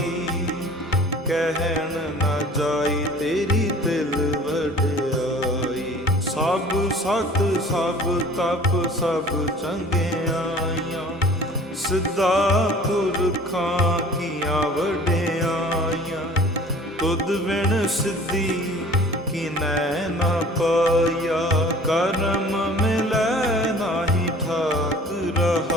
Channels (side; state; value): both; normal; correlation 0.48